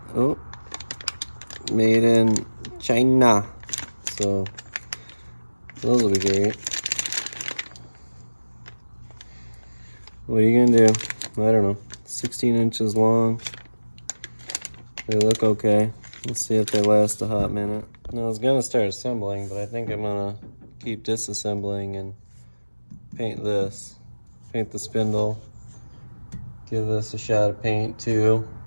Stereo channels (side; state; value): both; inverted; correlation -1.00